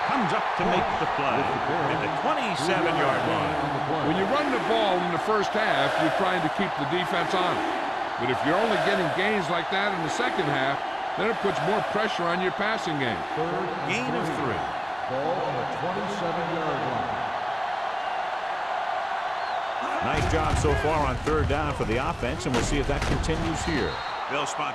comes up to make the play at the 27-yard line. When you run the ball in the first half, you're trying to keep the defense on it. But if you're only getting gains like that in the second half, then it puts more pressure on your passing game. Gain of 3. Ball on the 27-yard line. Nice job so far on third down for the offense, and we'll see if that continues here. They'll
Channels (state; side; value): identical; both; correlation 1.00